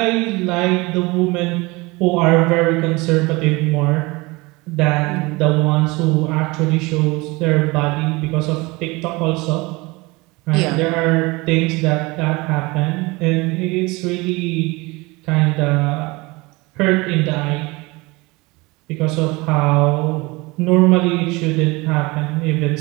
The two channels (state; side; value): quieter; left; 23.8 dB